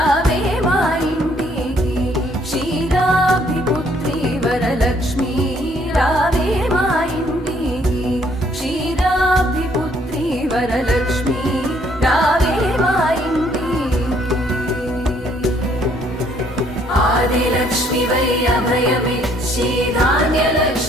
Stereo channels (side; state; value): both; normal; correlation 0.65